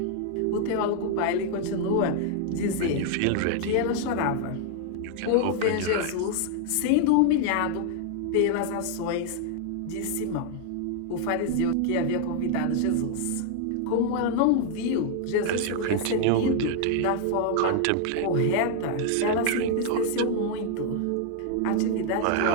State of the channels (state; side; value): different; both; correlation 0.00